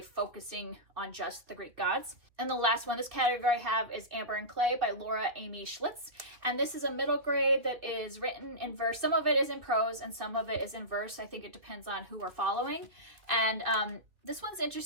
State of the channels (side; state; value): left; late; 2.3 ms